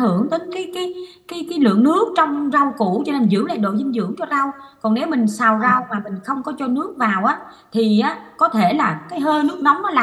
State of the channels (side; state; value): both; identical; correlation 1.00